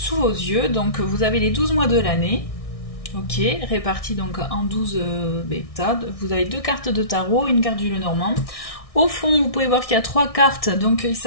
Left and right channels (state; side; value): late; right; 1.6 ms